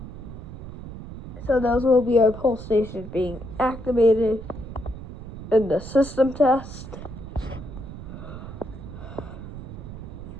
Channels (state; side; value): noise; right; rumble, 11 dB below the sound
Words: So those will be our pole stations being activated in the system test.